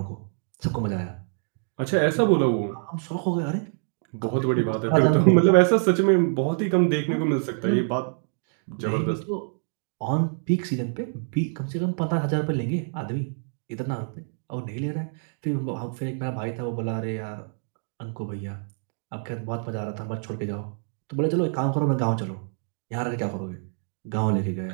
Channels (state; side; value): silent; left; 57 dB below the other